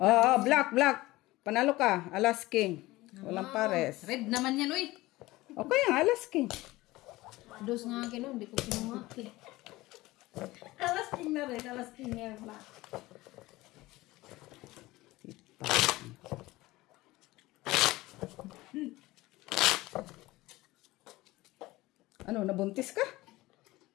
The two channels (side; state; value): right; quieter; 19.0 dB